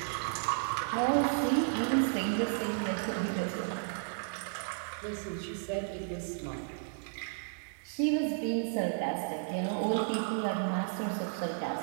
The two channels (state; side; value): silent; left; digital silence